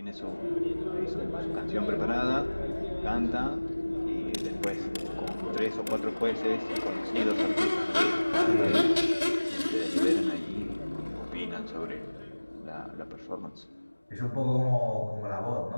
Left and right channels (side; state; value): both; inverted; correlation -1.00